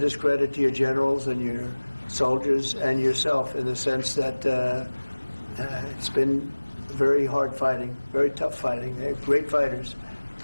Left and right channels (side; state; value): both; inverted; correlation -1.00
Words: credit to your generals and your soldiers and yourself in the sense that it's been very hard fighting, very tough fighting. They're great fighters.